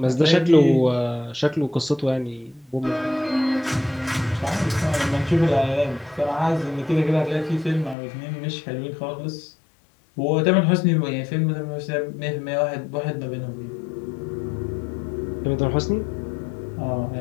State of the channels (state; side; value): drops out; right; at 8.0 s